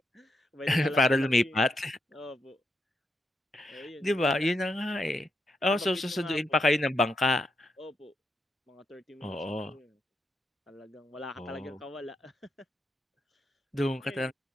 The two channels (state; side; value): normal; both; correlation 0.83